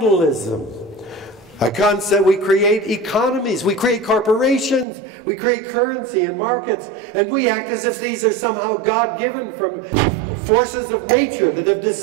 A concept, we create economies, we create corporations, we create currency and markets, and we act as if these are somehow God-given from forces of nature that have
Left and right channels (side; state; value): left; drops out; at 4.9 s